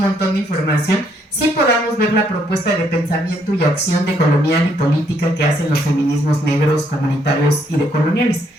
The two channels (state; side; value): normal; both; correlation 0.71